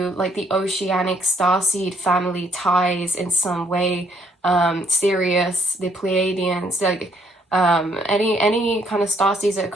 like the oceanic starseed family ties in some way, Sirius, the Pleiadians, like any kind of starseeds that are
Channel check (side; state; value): both; normal; correlation 0.68